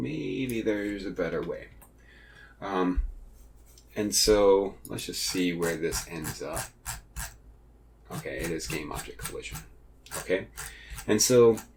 there's a better way. And so let's just see where this ends up. Okay, it is game object collision. Okay, and so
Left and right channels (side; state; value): both; identical; correlation 1.00